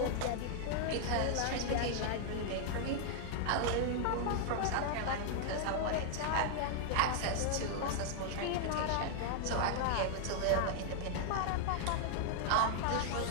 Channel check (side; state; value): both; different; correlation 0.00